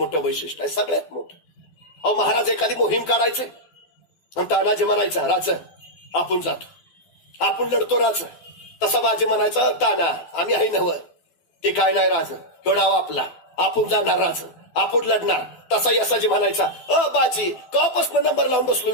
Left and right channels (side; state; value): right; late; 12 ms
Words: वैशिष्ट्य आहे, सगळ्यात मोठं. महाराज एखादी मोहीम काढायचे आणि तानाजी म्हणायचा, राज आपण जातो, आपण लढतो राज. तसा बाजी म्हणायचा, ताना आम्ही आहे नवं, ते काय नाही राज, गडाव आपला, आपण जाणार राज, आपण लढणार. तसा यसाजी म्हणायचा, बाजी कपासून नंबर लावून बसलो